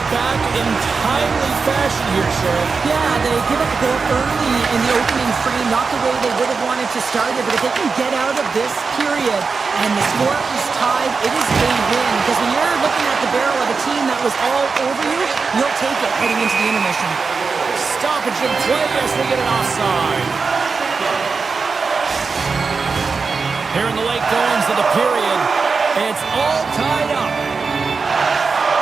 back in timely fashion here, Sheriff. Yeah, they give up a goal early in the opening frame, not the way they would have wanted to start it, but if they can get out of this period and the score is tied, it is a win. Because when you're looking at the barrel of a team that was all over you, you'll take it heading into the intermission. Stoppage in play as we get an offside. Here in the late goings of the period, it's all tied up.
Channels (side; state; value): left; quieter; 4.8 dB